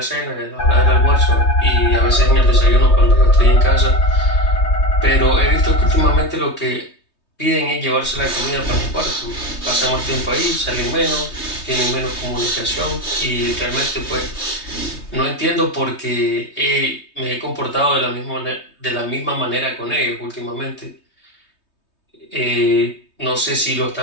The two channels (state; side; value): late; right; 3.2 ms